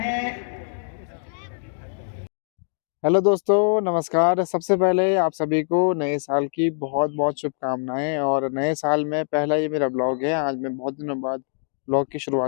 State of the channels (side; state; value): right; silent; digital silence